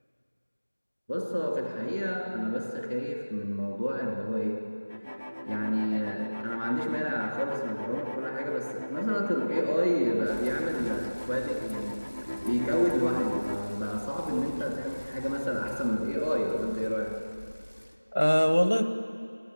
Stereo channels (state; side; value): inverted; both; correlation -1.00